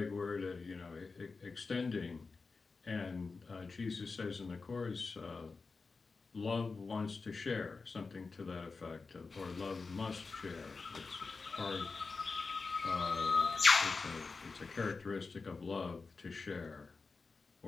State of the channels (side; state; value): right; quieter; 4.3 dB